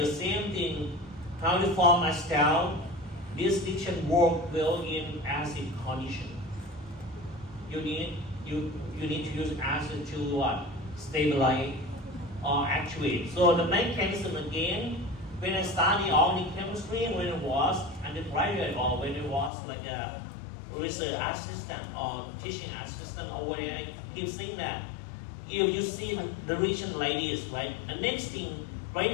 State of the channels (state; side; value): drops out; right; at 19.5 s